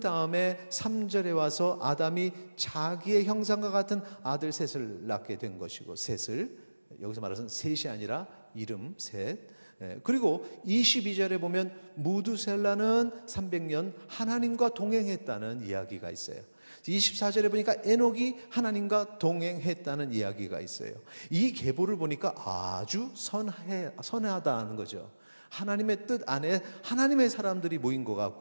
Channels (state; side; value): inverted; both; correlation -1.00